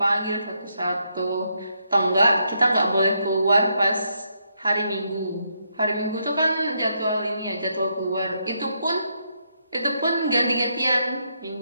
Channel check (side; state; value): both; inverted; correlation -0.78